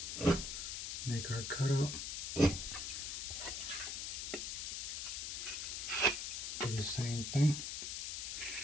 make our cutout. Do the same thing.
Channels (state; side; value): noise; left; hiss, 3 dB below the sound